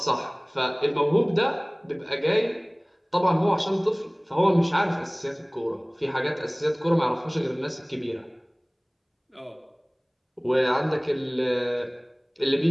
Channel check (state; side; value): identical; both; correlation 1.00